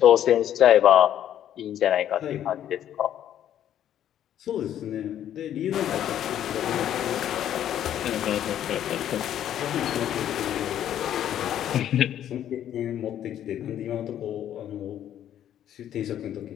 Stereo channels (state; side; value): quieter; right; 10.8 dB